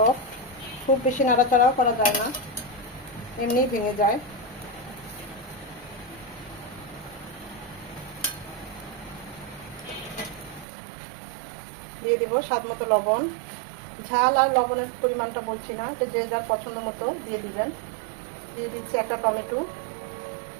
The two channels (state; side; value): drops out; left; at 10.7 s